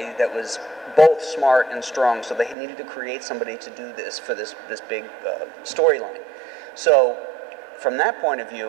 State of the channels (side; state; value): left; drops out; at 2.6 s